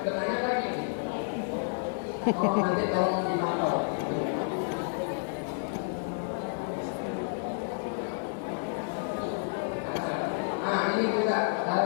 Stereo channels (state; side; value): silent; right; 58 dB below the other